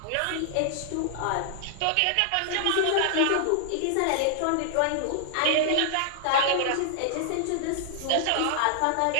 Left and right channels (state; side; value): different; both; correlation -0.01